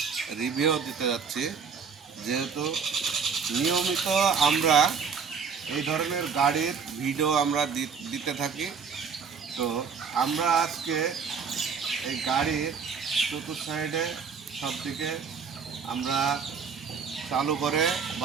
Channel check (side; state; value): left; quieter; 6.0 dB